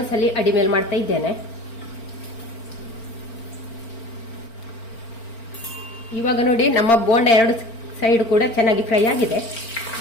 ಅಡಿ ಮೇಲೆ ಮಾಡ್ತಾ ಇದ್ದೇನೆ. ಇವಾಗ ನೋಡಿ, ನಮ್ಮ ಬೋಂಡ 2 ಸೈಡ್ ಕೂಡ ಚೆನ್ನಾಗಿ ಫ್ರೈ ಆಗಿದೆ.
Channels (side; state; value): right; late; 4.4 ms